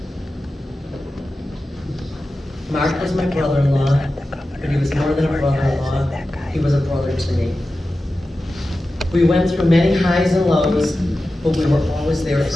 Mark was my brother-in-law, but he was more than a brother-in-law. He was a brother to me. We went through many highs and lows, but we were always there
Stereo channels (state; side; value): normal; both; correlation 0.94